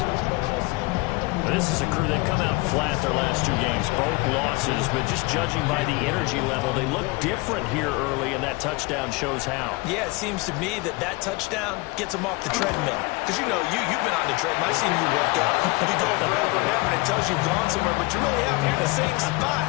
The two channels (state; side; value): quieter; right; 24.8 dB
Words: This is a crew, they've come out flat their last 2 games, both losses, but just judging by the energy level, they look different here early, and that touchdown shows how. Yeah, it seems to me that touchdown gets them off the treadmill. Because, you know, you've been on the treadmill. I've seen you work out. You go forever and ever, and it tells you've gone somewhere, but you really haven't. You're in the same